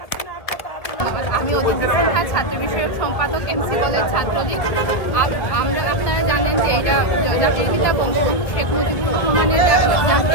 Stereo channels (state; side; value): late; right; 2.1 ms